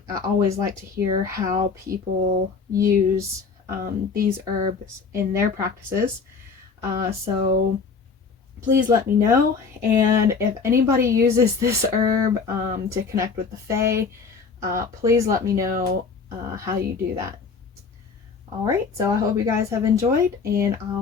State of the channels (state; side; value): quieter; right; 5.1 dB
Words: always like to hear how people use these herbs in their practices. So please let me know. And if anybody uses this herb to connect with the fae, please let me know how you do that. Alright, so I hope you guys have enjoyed, and